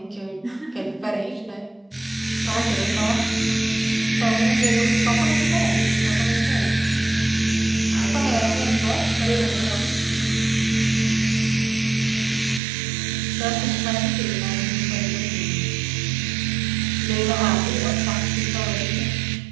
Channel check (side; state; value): left; drops out; at 12.6 s